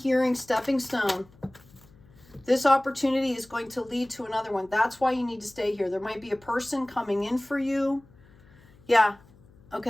stepping stone. This opportunity is going to lead to another one. That's why you need to stay here. There might be a person coming in for you. Yeah,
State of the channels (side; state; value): left; noise; hum, 27 dB below the sound